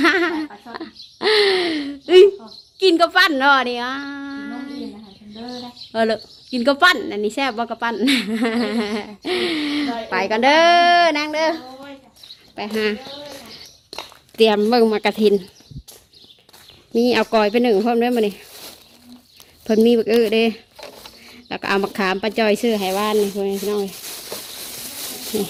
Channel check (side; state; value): both; identical; correlation 1.00